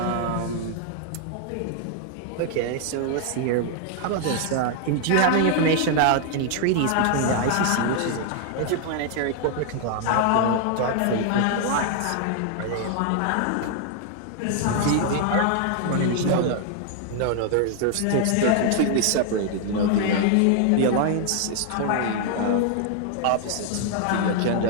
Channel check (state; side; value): different; both; correlation 0.00